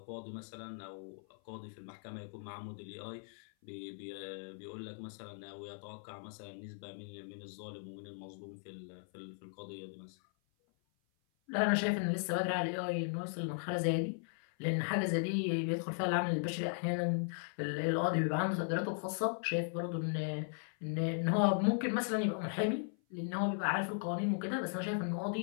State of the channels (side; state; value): right; silent; 53 dB below the other